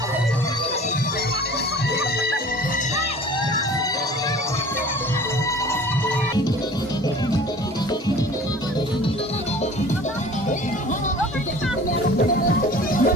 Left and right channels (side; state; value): both; normal; correlation 0.45